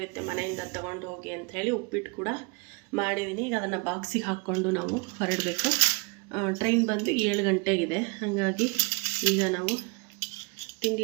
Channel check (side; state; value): left; quieter; 32.0 dB